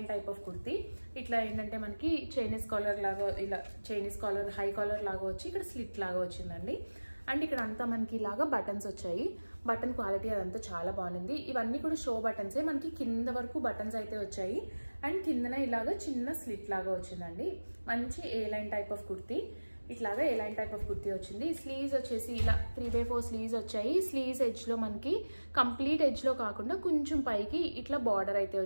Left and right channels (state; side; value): inverted; both; correlation -1.00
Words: టైప్ ఆఫ్ కుర్తీ. ఇట్లా ఏంటంటే మనకి చైనీస్ కాలర్ లాగా, ఇలా చైనీస్ కాలర్ హై కాలర్ లాగా వచ్చి ఇక్కడ స్లిట్ లాగా వచ్చిందండి. అండ్ ఇక్కడ అంతా మనకి ఇలాగా బటన్స్ వచ్చాయి. బటన్ క్వాలిటీ అదంతా చాలా బాగుంది. ఇవన్నీ కూడా షో బటన్సే. మనకి కింద వరకు బటన్స్ అయితే వచ్చాయి. అండ్ కిందన ఇలాగా చిన్న స్లిట్ లాగా వచ్చిందండి. మంచి ఏ లైన్ టైప్ ఆఫ్ కుర్తీ. ఇట్లాగా ఎలాంటి టైప్ ఆఫ్ కుర్తీ వచ్చింది. స్లీవ్స్ వచ్చేసి ఇలా 3/4 స్లీవ్స్ వచ్చాయి. స్లీవ్స్ ఎడ్జ్లో మనకి కంప్లీట్ ఎడ్జ్లో కాకుండా కొంచెం పైకి ఇట్లా బార్డర్ అయితే